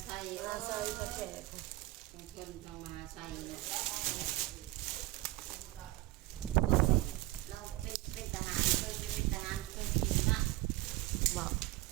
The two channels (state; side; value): quieter; left; 18.5 dB